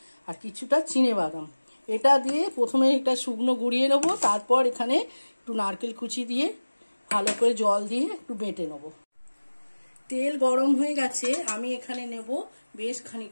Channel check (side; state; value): both; inverted; correlation -1.00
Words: আর কিছুটা চিনেবাদাম। এটা দিয়ে প্রথমে এটা শুকনো গুঁড়িয়ে নেবো, তারপর এখানে একটু নারকেল কুচি দিয়ে ভালো করে জল দিয়ে একটু বেটে নেবো। তেল গরম হয়ে গেছে, আমি এখানে নেব বেশ